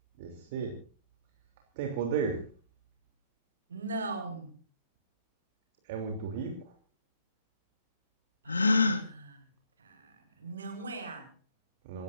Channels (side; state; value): both; inverted; correlation -0.63